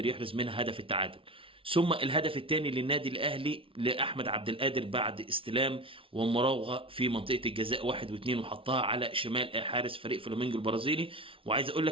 يحرز منها هدف التعادل. ثم الهدف الثاني للنادي الاهلي لاحمد عبد القادر بعد استلام ومراوغه في منطقه الجزاء 1 و2، وحطها على شمال حارس فريق فلامينجو البرازيلي. وعايز اقول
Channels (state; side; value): late; left; 0.26 ms